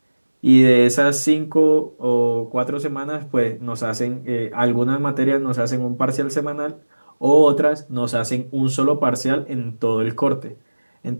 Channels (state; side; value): inverted; both; correlation -1.00